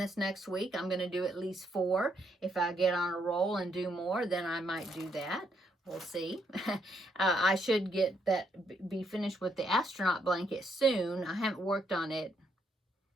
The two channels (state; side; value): normal; both; correlation 0.74